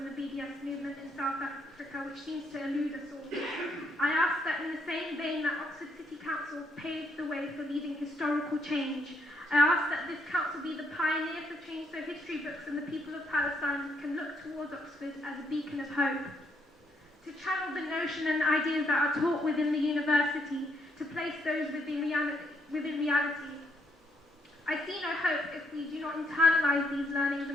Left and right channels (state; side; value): normal; both; correlation 0.74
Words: the BDS movement in South Africa, which seems to elude us all. I ask that in the same vein that Oxford City Council paved the way for leading historical change, I ask that this council be the pioneer for change so history books and the people of Palestine can look towards Oxford as a beacon of hope. To channel the notion and ideas that are taught within the university, to place those within reality. I see no hope if we do not internalise these learnings